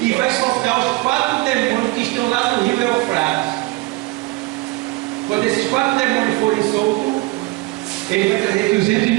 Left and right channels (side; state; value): left; quieter; 21.9 dB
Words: e vai soltar os 4 demônios que estão lá no rio Eufrates. Quando esses 4 demônios forem soltos, ele vai trazer 200